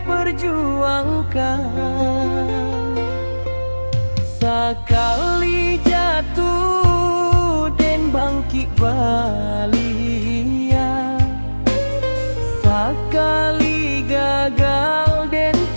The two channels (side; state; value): both; inverted; correlation -1.00